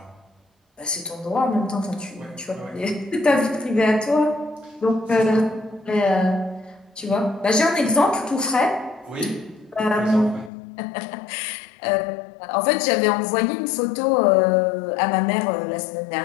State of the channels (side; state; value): right; drops out; at 10.5 s